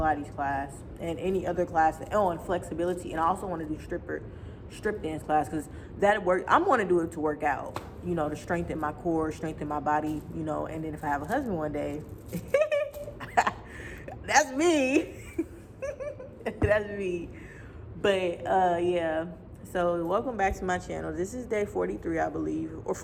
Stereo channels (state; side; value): identical; both; correlation 1.00